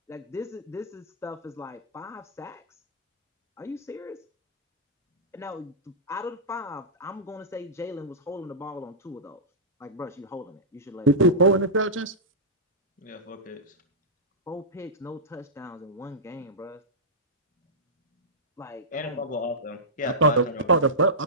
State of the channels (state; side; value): normal; both; correlation -0.14